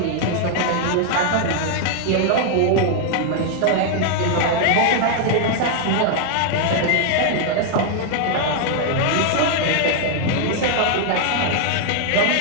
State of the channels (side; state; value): both; different; correlation 0.00